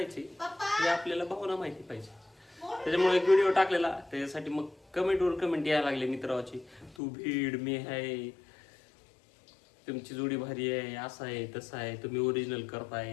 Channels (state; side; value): drops out; right; at 7.0 s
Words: हे आपल्याला भावना माहिती पाहिजे. त्याच्यामुळे एक व्हिडिओ टाकलेला. त्याच्यासाठी मग कमेंट यायला लागले मित्राची. तू भीड, मी आहे, तुमची जोडी भारी आहे, असं आहे तसं आहे, तुम्ही ओरिजिनल